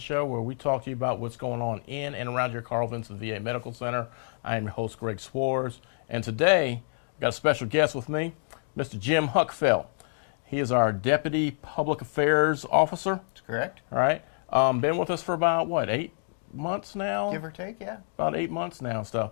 where we talk to you about what's going on in and around your Carl Vinson VA Medical Center. I am your host, Greg Swartz, and today I've got a special guest with me, Mr. Jim Huckfeldt. He is our Deputy Public Affairs Officer. That's correct. All right. Been with us for about, 8 months now? Give or take, yeah. About 8 months now and stuff.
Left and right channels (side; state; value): right; silent; digital silence